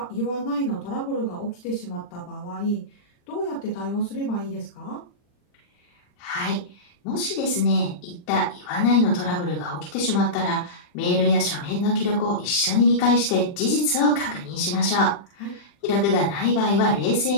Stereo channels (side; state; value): right; late; 40 ms